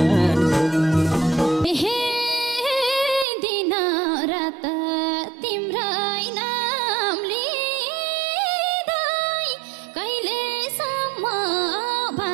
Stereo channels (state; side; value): drops out; left; at 3.2 s